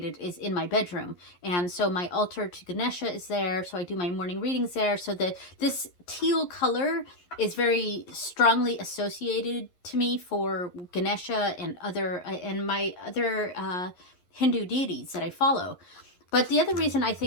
is in my bedroom, and so my altar to Ganesha is there. So I do my morning readings there. So this teal color is very strongly associated to me for Ganesha and my other Hindu deities that I follow. But the other reason I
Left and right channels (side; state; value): right; late; 11 ms